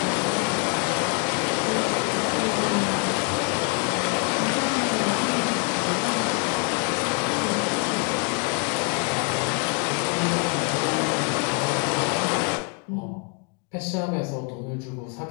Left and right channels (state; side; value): quieter; right; 34.4 dB